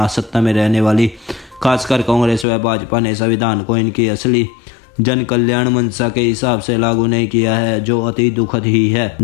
सत्ता में रहने वाली खासकर कांग्रेस व भाजपा ने संविधान को इनकी असली जन कल्याण मंशा के हिसाब से लागू नहीं किया है, जो अति दुखद ही है।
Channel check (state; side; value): drops out; right; at 2.5 s